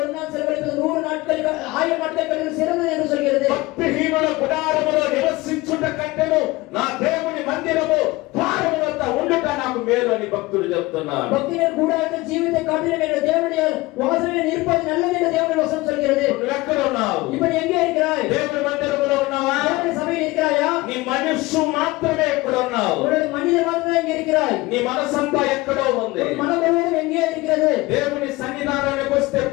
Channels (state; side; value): quieter; right; 21.0 dB